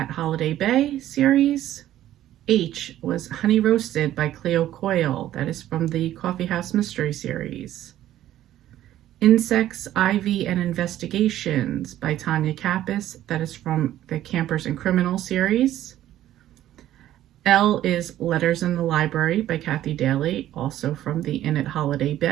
Holiday Bay series. H was Honey Roasted by Cleo Coyle. That is from the Coffee House Mystery series. Insects, Ivy, and Investigations by Tanya Kappas. That is from the Campers and Criminals series. L is Letters in the Library by Kathy Daly, also from the Inn at Holiday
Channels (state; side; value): quieter; left; 13.0 dB